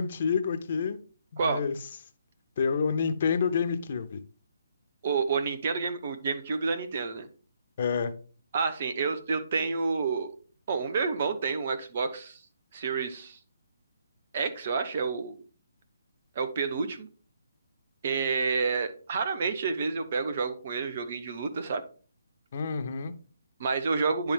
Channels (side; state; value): both; inverted; correlation -0.72